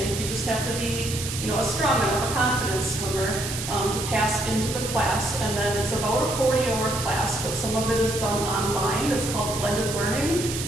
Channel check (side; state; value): right; noise; hiss, 6 dB below the sound